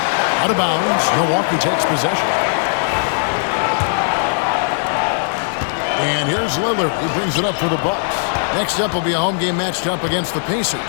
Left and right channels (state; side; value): silent; right; digital silence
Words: Out of bounds, Milwaukee takes possession. And here's Lillard, who brings it up for the Bucks. Next up will be a home game matched up against the Pacers.